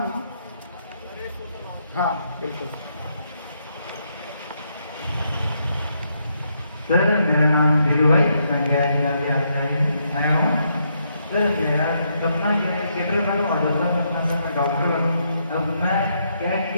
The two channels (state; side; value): inverted; both; correlation -0.77